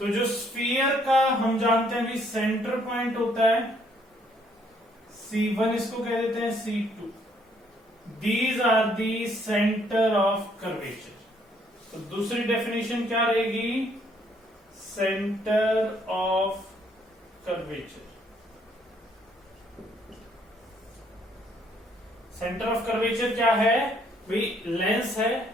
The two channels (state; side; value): normal; both; correlation 0.67